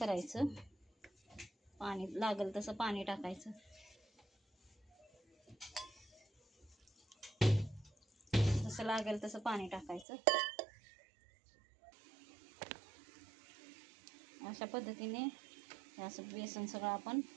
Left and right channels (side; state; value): left; drops out; at 10.1 s